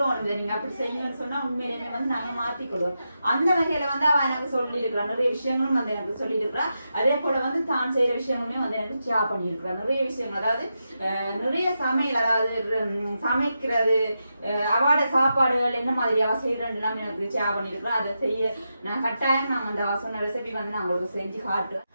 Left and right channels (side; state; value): both; inverted; correlation -0.87